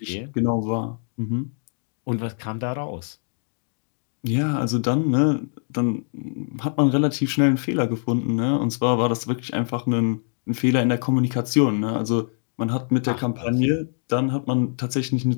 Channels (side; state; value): right; silent; 63 dB below the other